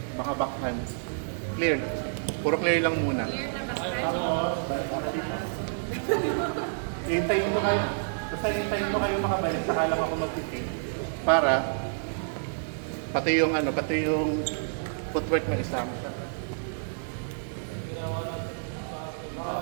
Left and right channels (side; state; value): left; silent; digital silence